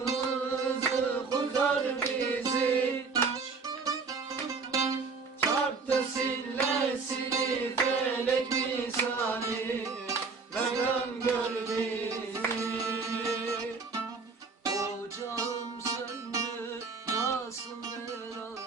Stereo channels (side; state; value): left; quieter; 4.6 dB